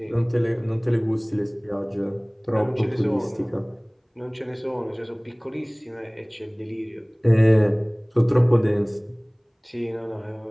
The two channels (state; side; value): identical; both; correlation 1.00